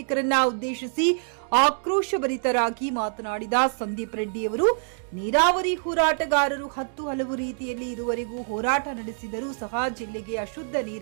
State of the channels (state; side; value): silent; left; digital silence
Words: ಉದ್ದೇಶಿಸಿ ಆಕ್ರೋಶಭರಿತರಾಗಿ ಮಾತನಾಡಿದ ಸಂದೀಪ್ ರೆಡ್ಡಿಯವರು, ನೀರಾವರಿ ಹೋರಾಟಗಾರರು ಹಲವು ರೀತಿಯಲ್ಲಿ ಇರುವರೆಗೂ ಹೋರಾಟ ನಡೆಸಿದರೂ ಸಹ ಜಿಲ್ಲೆಗೆ ಅಶುದ್ಧ